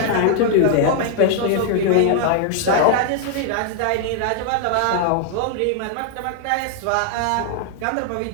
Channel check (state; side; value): different; both; correlation 0.00